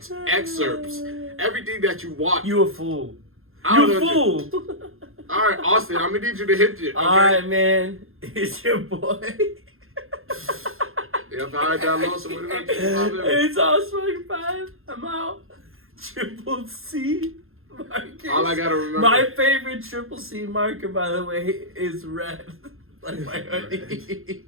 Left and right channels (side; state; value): left; late; 0.61 ms